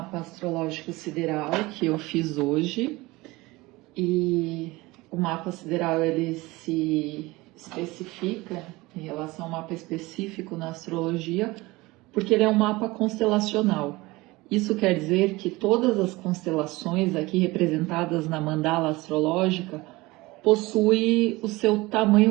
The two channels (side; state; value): left; quieter; 21.3 dB